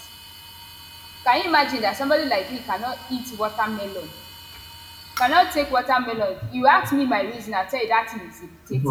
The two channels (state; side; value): identical; both; correlation 1.00